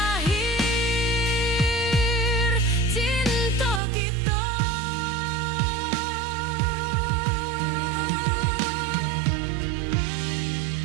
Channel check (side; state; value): left; drops out; at 3.8 s